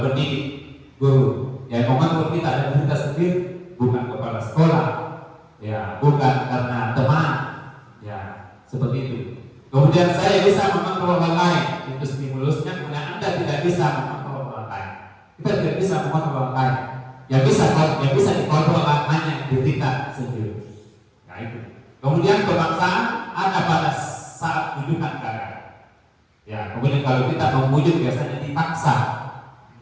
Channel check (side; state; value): both; identical; correlation 1.00